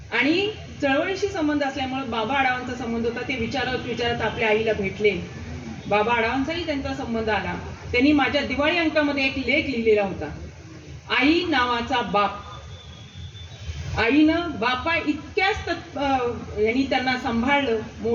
आणि चळवळीशी संबंध असल्यामुळे बाबा आढावांचा संबंध होता. ते विचारत आपल्या आईला भेटले. बाबा आढावांचाही त्यांचा संबंध आला. त्यांनी माझ्या दिवाळी अंकामध्ये एक लेख लिहिलेला होता, आई नावाचा बाप. आईनं बापा इतक्याच यांनी त्यांना सांभाळलं,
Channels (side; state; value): both; identical; correlation 1.00